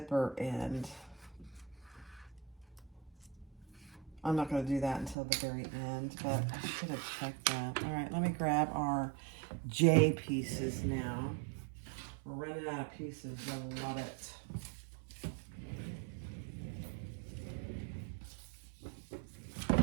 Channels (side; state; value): left; drops out; at 5.2 s